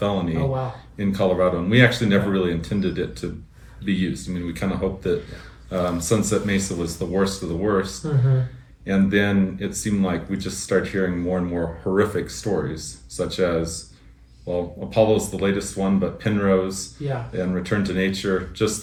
in Colorado. And we actually never really intended it to be used. I mean, we kind of hoped that Sunset Mesa was the worst of the worst. And then it seemed like we just started hearing more and more horrific stories, such as, well, Apollo's the latest one, but Penrose and Return to Nature,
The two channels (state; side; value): identical; both; correlation 1.00